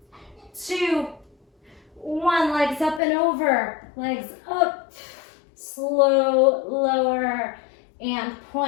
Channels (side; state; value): right; drops out; at 3.0 s